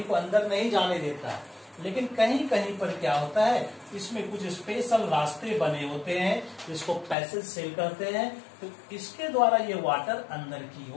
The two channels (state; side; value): drops out; right; at 7.2 s